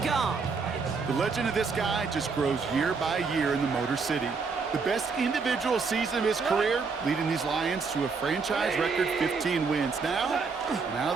Goff. The legend of this guy just grows year by year in the Motor City. The best individual season of his career, leading these Lions to a franchise record 15 wins. Now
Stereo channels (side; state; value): left; quieter; 4.9 dB